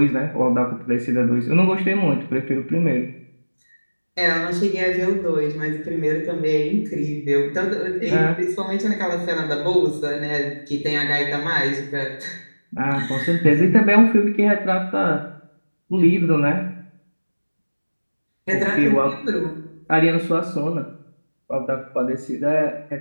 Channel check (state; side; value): inverted; both; correlation -1.00